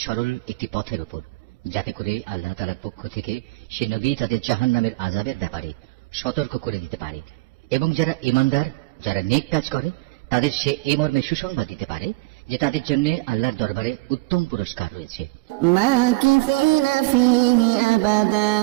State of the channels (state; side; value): quieter; left; 22.2 dB